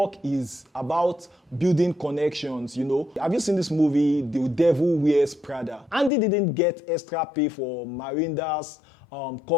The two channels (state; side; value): drops out; right; at 6.1 s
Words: is about building connections, you know. Have you seen this movie, The Devil Wears Prada? Andy didn't get extra pay for Miranda's